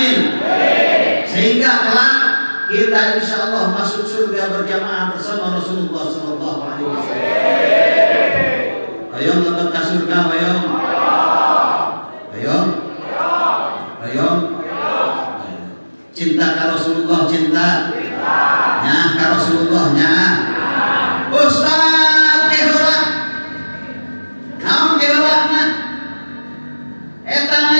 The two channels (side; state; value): both; inverted; correlation -1.00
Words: Sehingga kelak kita kita insya Allah masuk surga berjamaah bersama Rasulullah Sallallahu Alaihi Wasallam. Ayo lebet ke surga, ayo. Ayo. Ayo. Cinta ke Rasulullah, cinta. Nah, ke Rasulullahnya. Ustaz keheula. Naon keheulana? Eta